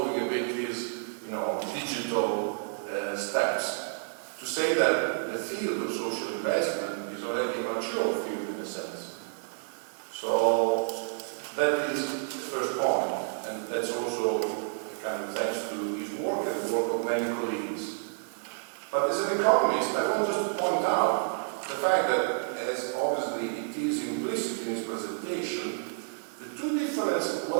But as an economist, I want just to point out the fact that, as obviously it is implicit in his presentation, the two different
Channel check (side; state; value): left; silent; 58 dB below the other